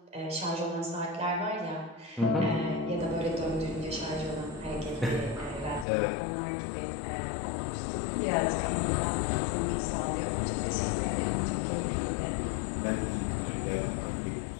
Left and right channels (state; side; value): drops out; right; at 5.9 s